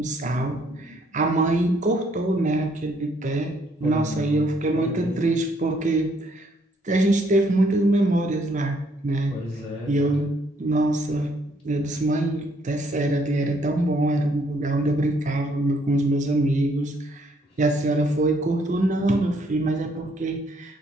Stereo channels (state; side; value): normal; both; correlation 0.68